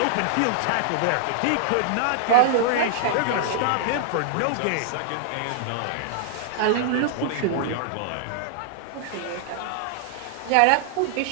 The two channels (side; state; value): both; different; correlation -0.01